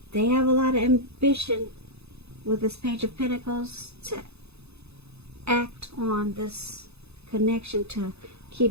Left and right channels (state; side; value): late; left; 0.79 ms